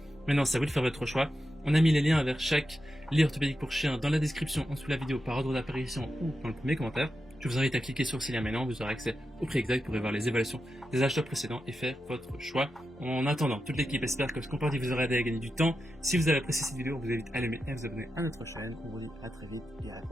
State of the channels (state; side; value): normal; both; correlation 0.89